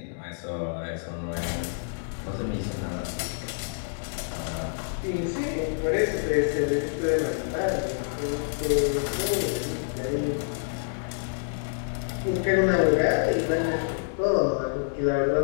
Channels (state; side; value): silent; right; digital silence